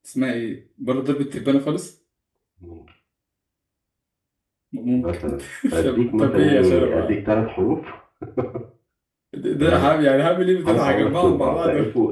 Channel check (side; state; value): both; identical; correlation 1.00